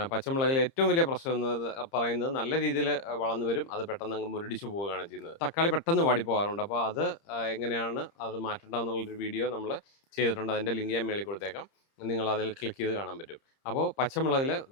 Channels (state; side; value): late; right; 30 ms